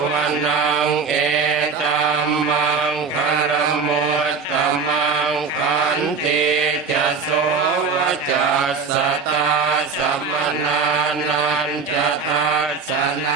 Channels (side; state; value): left; quieter; 5.2 dB